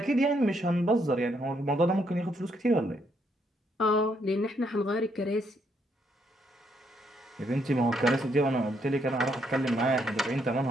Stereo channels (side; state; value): both; normal; correlation 0.74